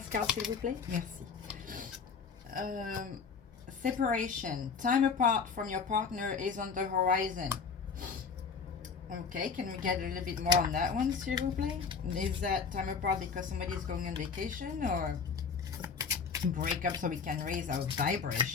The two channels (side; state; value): right; quieter; 5.7 dB